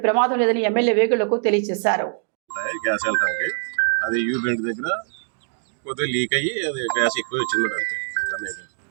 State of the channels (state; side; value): silent; left; digital silence